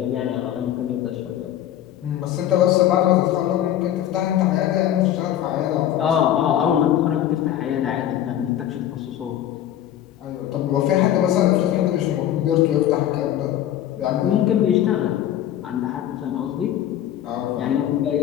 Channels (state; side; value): quieter; right; 11.5 dB